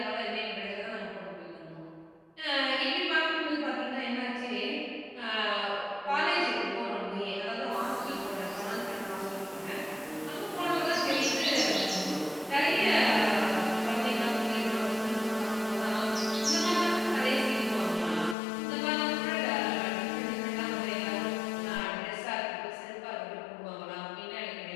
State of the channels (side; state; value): right; drops out; at 18.4 s